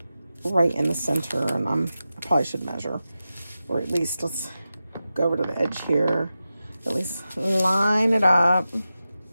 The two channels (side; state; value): both; inverted; correlation -0.93